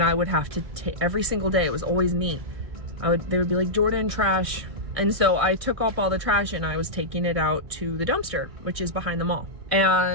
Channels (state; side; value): late; left; 1.6 ms